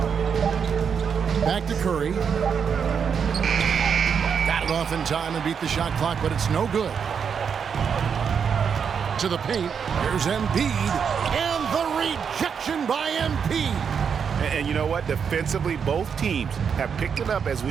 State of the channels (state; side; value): quieter; left; 6.8 dB